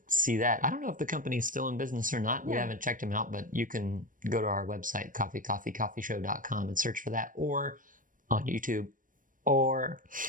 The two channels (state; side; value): late; left; 0.39 ms